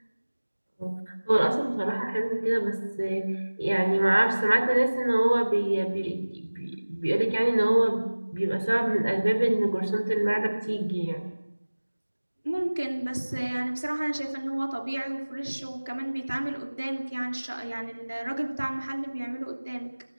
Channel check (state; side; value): inverted; both; correlation -1.00